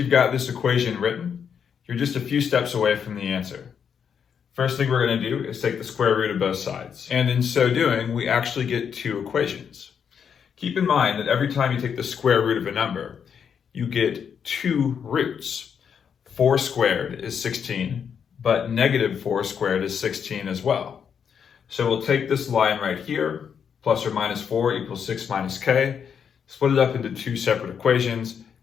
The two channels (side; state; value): right; quieter; 7.3 dB